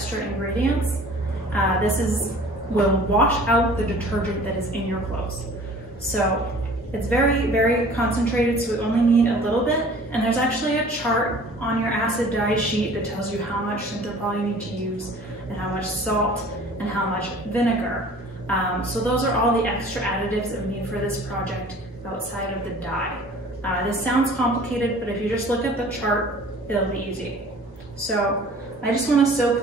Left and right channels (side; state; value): both; normal; correlation 0.48